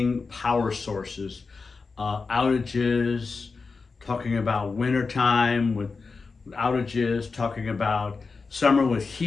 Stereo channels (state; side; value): quieter; right; 4.5 dB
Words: power sources, outages, talking about wintertime with outages, talking about summer with